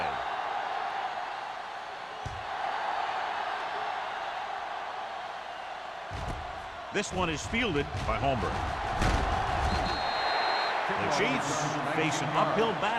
This one is fielded by Holmberg. The Chiefs face an uphill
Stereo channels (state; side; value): identical; both; correlation 1.00